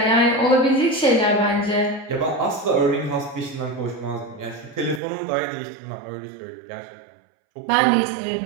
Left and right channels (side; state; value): left; drops out; at 5.0 s